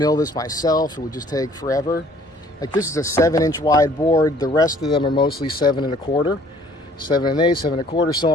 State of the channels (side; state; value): both; normal; correlation 0.57